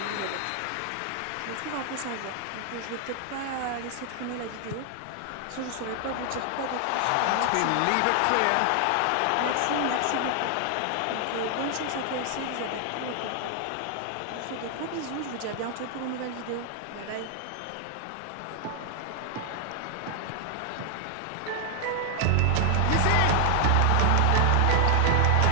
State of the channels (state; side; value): different; both; correlation 0.00